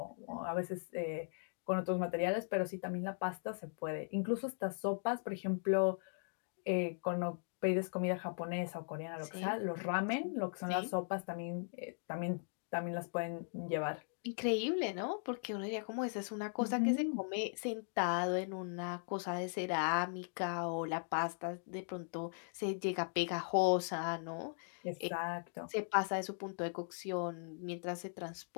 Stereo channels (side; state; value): right; silent; digital silence